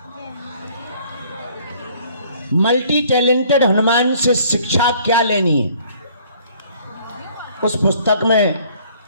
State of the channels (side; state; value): both; inverted; correlation -0.58